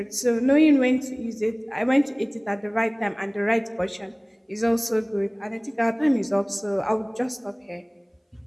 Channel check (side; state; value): both; identical; correlation 1.00